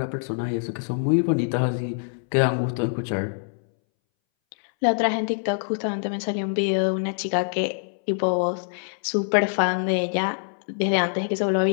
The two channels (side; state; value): right; silent; 62 dB below the other